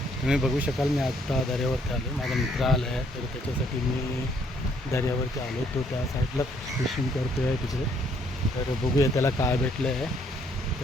तुम्ही बघू शकाल मी आत्ता दर्यावरती आलो. माझा मित्र आला आहे, तर त्याच्यासाठी मी दर्यावरती आलो. तो त्या साईडला फिशिंग करतो आहे तिकडे. तर बघूया त्याला काय भेटलं आहे,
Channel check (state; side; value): normal; both; correlation 0.67